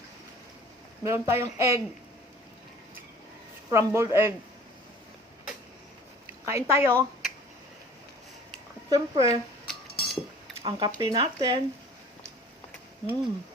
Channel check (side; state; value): both; normal; correlation 0.48